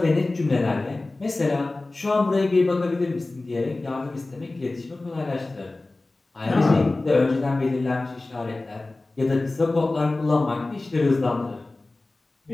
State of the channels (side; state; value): right; quieter; 3.1 dB